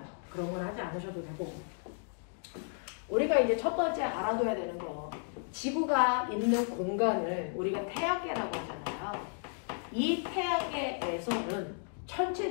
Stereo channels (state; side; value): silent; right; 55 dB below the other